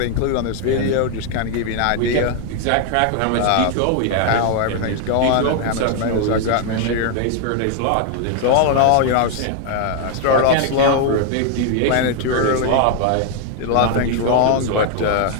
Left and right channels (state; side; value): different; both; correlation 0.00